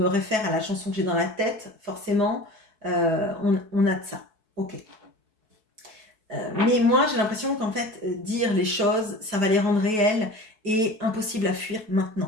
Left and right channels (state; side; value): late; left; 4.6 ms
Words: réfère à la chanson que j'ai dans la tête, forcément, on a de ça. Ok. Mais moi, j'ai l'impression qu'en fait, dire les choses, ça va les rendre réelles et impossible à fuir